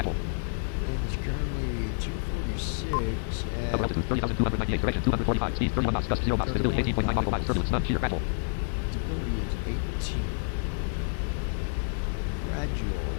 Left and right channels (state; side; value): silent; right; digital silence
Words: And it's currently 246 at... Upper altitude 30,298. Direction 245 feet. 31 knots. Gust 0 knots. Visibility 18.9 nautical miles. Turbulence none. Shear gradual. Stability is 18. Gradual